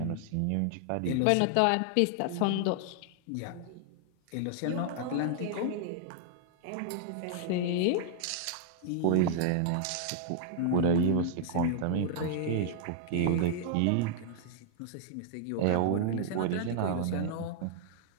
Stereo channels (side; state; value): both; different; correlation -0.01